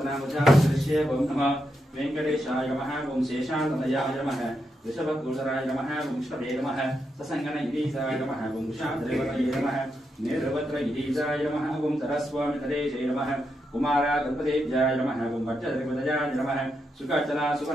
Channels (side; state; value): both; normal; correlation 0.83